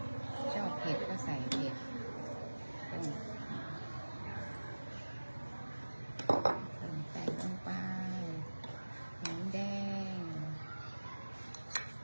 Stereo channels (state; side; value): inverted; both; correlation -1.00